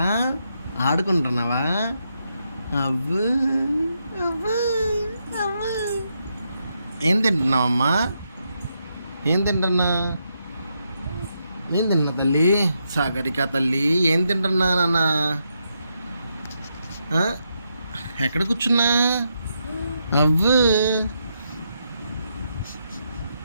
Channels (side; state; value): both; inverted; correlation -0.81